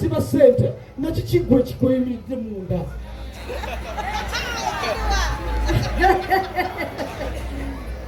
ssente nakyo kiggwa ekikweyimiridde munda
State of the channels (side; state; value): both; identical; correlation 1.00